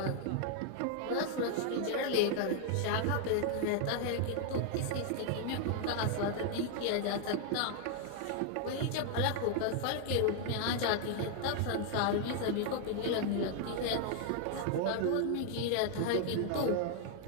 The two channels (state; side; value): different; both; correlation 0.00